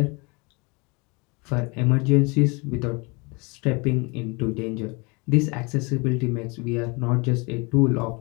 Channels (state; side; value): quieter; right; 28.8 dB